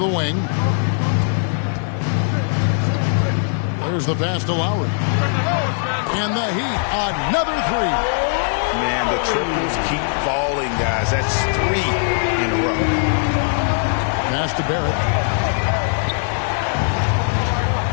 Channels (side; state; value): right; silent; 66 dB below the other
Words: wing. Here's the pass to Lowry. And the Heat, another three. Man, the triples keep falling, guys. That's 3 in a row. Pass to Barrett.